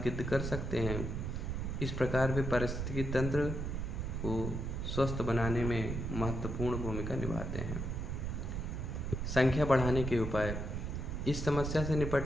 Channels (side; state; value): right; noise; rumble, 3 dB below the sound